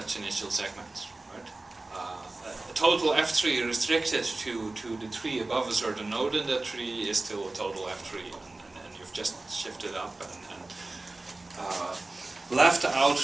initial segments. Right? A total F tree restricted to the tree above a certain node in that tree is still a total F tree, and you've just shifted up and left out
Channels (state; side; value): quieter; left; 3.1 dB